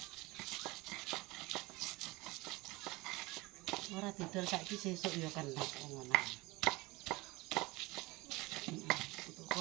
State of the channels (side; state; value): left; quieter; 22.3 dB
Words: Ora didol saiki sesuk ya kena ngono.